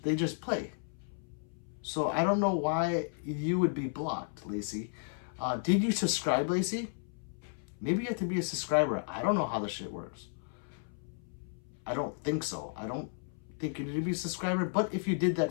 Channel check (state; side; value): silent; right; 55 dB below the other